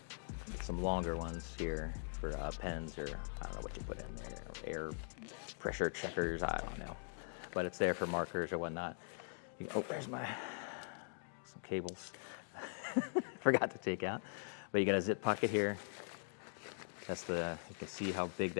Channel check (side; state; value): right; silent; digital silence